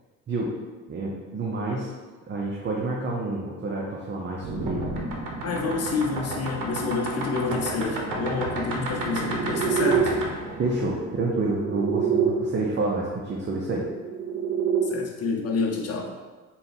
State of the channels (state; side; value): normal; both; correlation 0.32